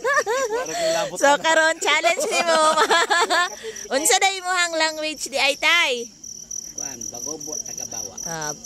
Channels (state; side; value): identical; both; correlation 1.00